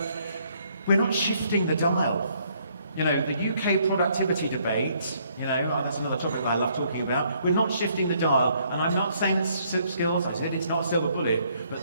we're not shifting the dial. You know, the UK productivity debate, that's another topic that I love talking about. We're not shifting the dial, and I'm not saying skills, I said it's not a silver bullet,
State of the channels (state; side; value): inverted; both; correlation -0.68